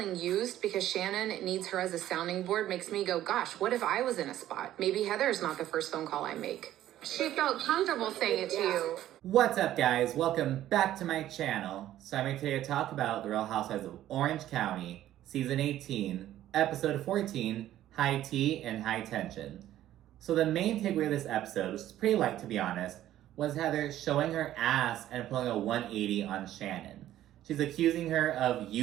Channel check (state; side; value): quieter; left; 13.0 dB